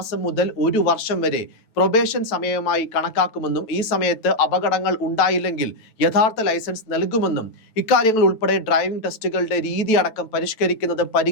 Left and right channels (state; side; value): late; right; 9.1 ms